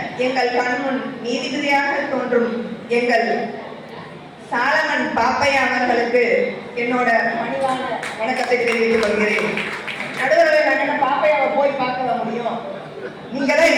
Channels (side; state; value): both; identical; correlation 1.00